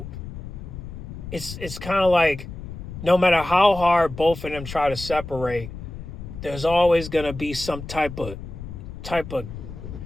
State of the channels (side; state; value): left; noise; rumble, 10 dB below the sound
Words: it's kind of like no matter how hard both of them try to separate, there's always gonna be some type of